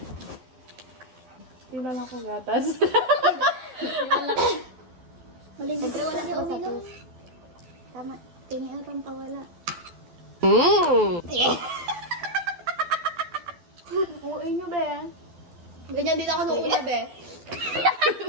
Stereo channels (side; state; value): left; late; 12 ms